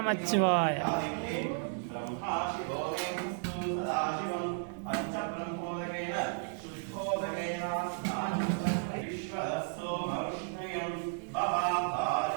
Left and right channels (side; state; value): left; silent; 55 dB below the other